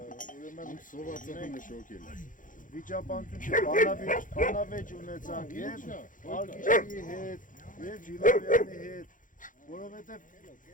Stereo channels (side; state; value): right; late; 0.38 ms